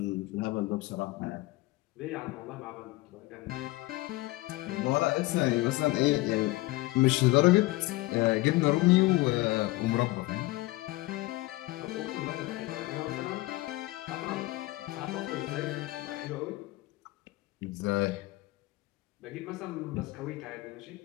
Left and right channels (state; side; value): quieter; right; 20.1 dB